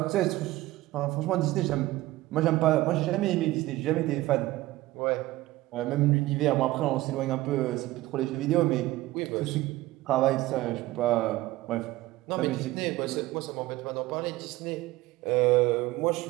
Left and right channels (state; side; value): quieter; left; 17.6 dB